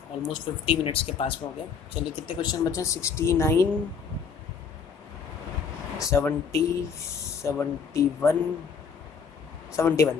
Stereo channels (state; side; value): quieter; right; 6.2 dB